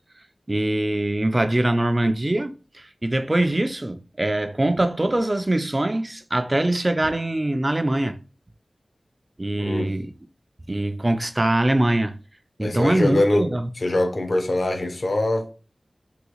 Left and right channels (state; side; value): normal; both; correlation 0.98